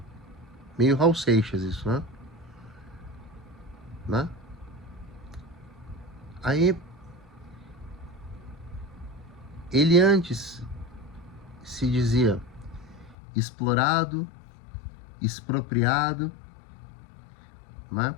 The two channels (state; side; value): drops out; right; at 13.2 s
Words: Meio Raul Seixas isso, né? Aí, ele antes se dizia explorado, expropriado, né?